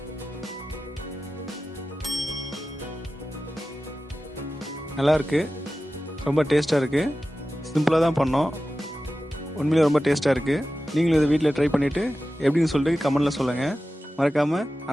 நல்லா இருக்குது, ரொம்ப டேஸ்ட்டாக இருக்குது. சிம்பிளாக தான் பண்ணோம், உண்மையிலே ரொம்ப டேஸ்ட்டாக இருக்குது. நீங்களும் இதை வீட்டில் ட்ரை பண்ணிவிட்டு எப்படின்னு சொல்லிட்டு கமெண்டில் சொல்லுங்கள். மறக்காமல்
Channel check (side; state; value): both; normal; correlation 0.94